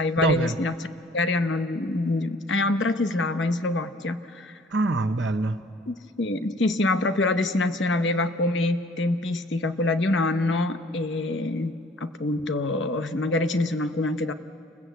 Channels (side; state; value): both; normal; correlation 0.55